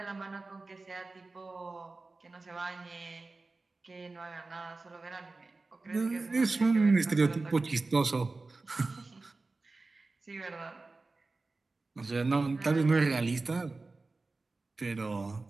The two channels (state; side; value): quieter; left; 3.5 dB